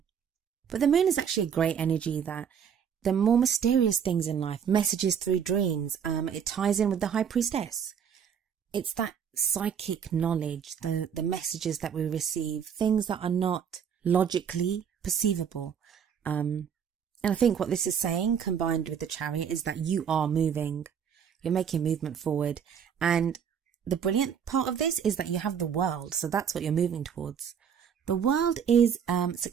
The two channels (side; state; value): left; quieter; 7.8 dB